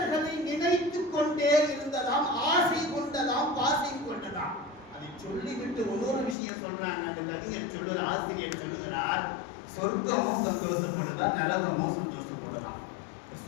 நினைத்துக் கொண்டே இருந்ததாம், ஆசை கொண்டதாம், பாசை கொண்டதாம். அதை சொல்லிவிட்டு இன்னொரு விஷயம் சொல்றாங்க. அந்த கவிஞர் சொல்லுற ஆசிரியர் சொல்லுகிறார், சொர்க்கமும் சந்தோஷப்படுதா, நரகமும் சந்தோஷப்படுதான்.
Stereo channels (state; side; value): drops out; right; at 6.4 s